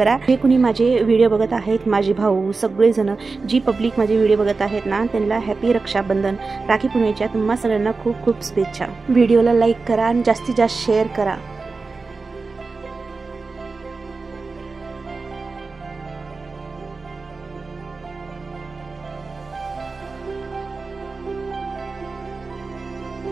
जे कुणी माझे व्हिडिओ बघत आहेत, माझे भाऊ सगळेजण, जी पब्लिक माझे व्हिडिओ बघत आहेत ना, त्यांना हॅपी रक्षाबंधन. राखी पौर्णिमेच्या तुम्हा सगळ्यांना खूप खूप शुभेच्छा. व्हिडिओला लाईक करा आणि जास्तीत जास्त शेअर करा.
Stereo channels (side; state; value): left; quieter; 4.1 dB